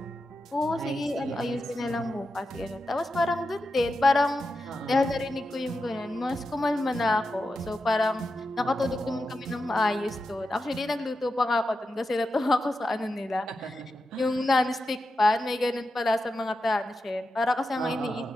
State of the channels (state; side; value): normal; both; correlation 0.89